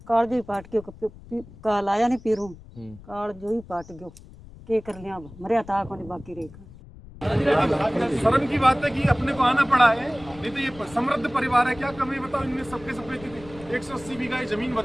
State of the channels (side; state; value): left; noise; rumble, 19 dB below the sound